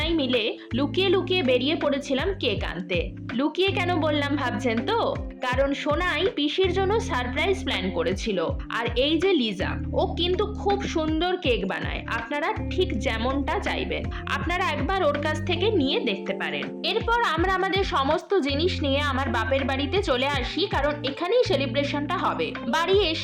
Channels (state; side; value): identical; both; correlation 1.00